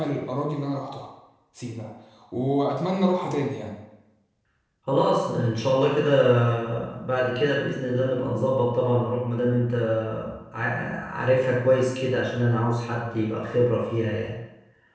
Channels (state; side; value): identical; both; correlation 1.00